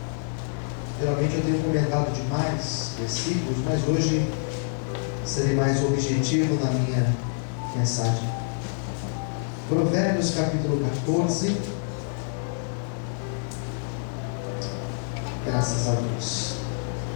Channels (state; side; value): silent; right; digital silence